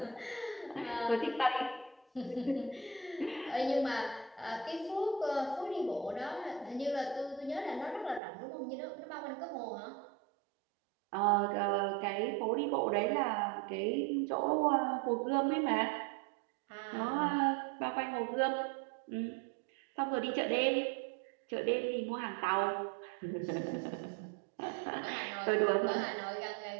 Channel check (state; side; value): drops out; left; at 8.2 s